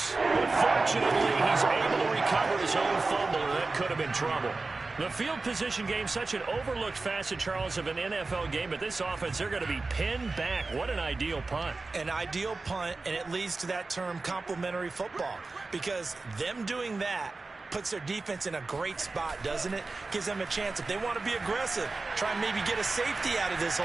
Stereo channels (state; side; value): quieter; left; 3.6 dB